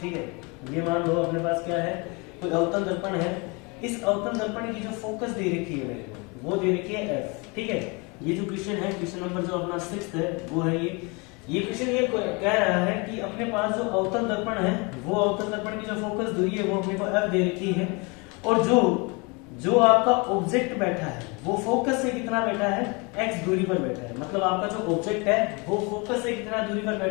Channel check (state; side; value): quieter; right; 29.5 dB